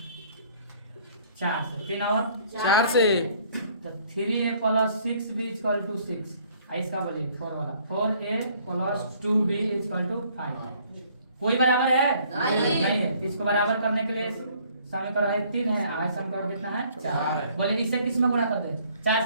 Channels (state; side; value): inverted; both; correlation -0.60